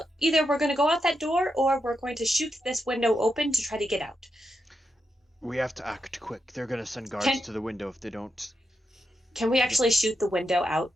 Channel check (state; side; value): normal; both; correlation 0.86